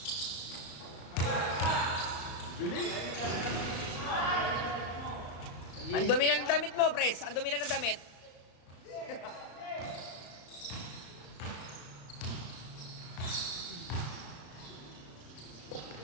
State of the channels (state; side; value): late; right; 34 ms